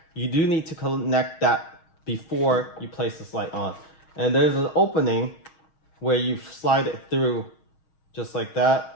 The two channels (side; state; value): right; late; 6.4 ms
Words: that before you place this light on. And there's an opening where you slide it through just like